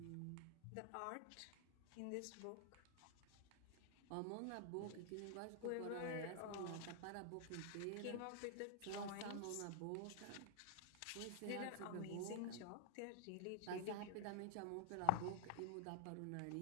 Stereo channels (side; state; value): both; different; correlation 0.00